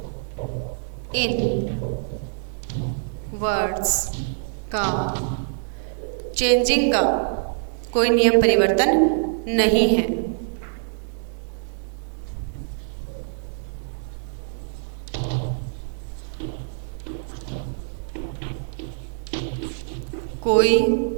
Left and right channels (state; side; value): silent; left; 62 dB below the other